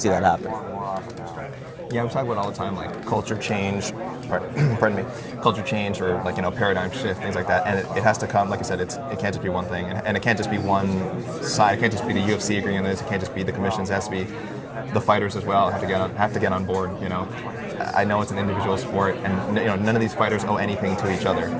that happen. Yeah, we talk about it all the time, like culture change, pardon me, culture change, or paradigm shift, things like that. And it has to come, like I said, it can't just be one thing, and it can't just be one side. It can't just be the UFC agreeing on this. It can't just be the commissions. It has to be the fighters as well. Have to get on board. I know it's an individual sport, and none of these fighters owe anything to each other.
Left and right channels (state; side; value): identical; both; correlation 1.00